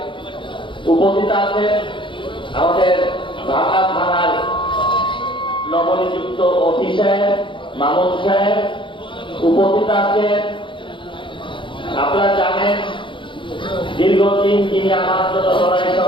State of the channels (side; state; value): right; late; 0.24 ms